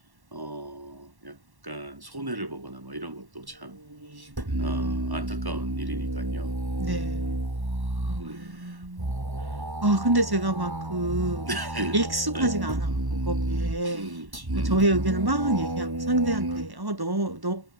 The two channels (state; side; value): late; left; 1.1 ms